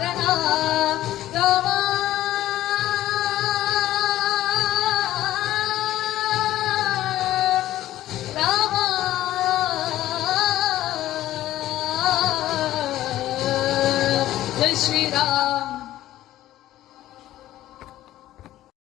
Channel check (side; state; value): right; quieter; 14.1 dB